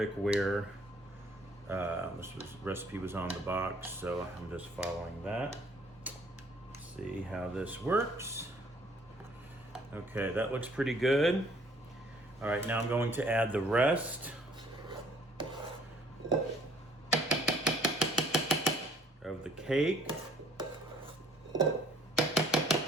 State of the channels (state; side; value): normal; both; correlation 0.59